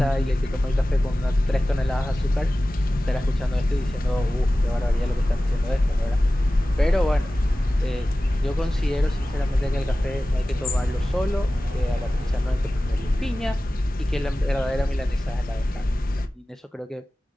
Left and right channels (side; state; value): both; normal; correlation 0.96